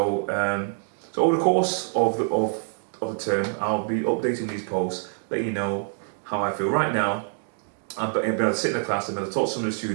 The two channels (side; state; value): left; silent; digital silence